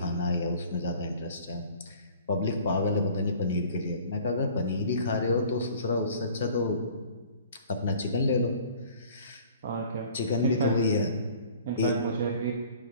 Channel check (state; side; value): inverted; both; correlation -0.50